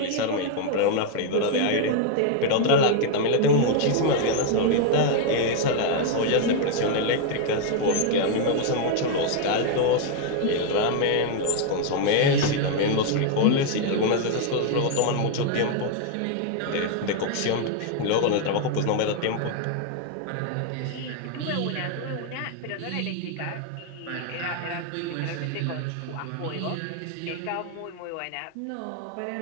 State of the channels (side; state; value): both; different; correlation 0.00